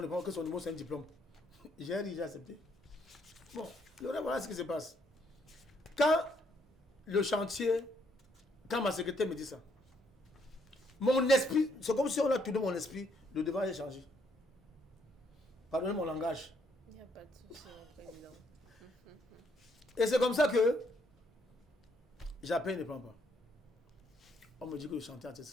ne pense que son numéro, c'est un diplôme. J'ai déjà accepté. Bon, voilà ce qui se passe. Quand le chantier, quand ma secrétaire me dit ça, mon esprit, c'est comme si on a tourné mon esprit, le devant est changé. Pardonnez mon langage. Il n'y a pas de souci, mon président. Et c'est comme ça que j'appelle, il ne prend pas. On me dit que le chantier a été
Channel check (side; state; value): both; normal; correlation 0.71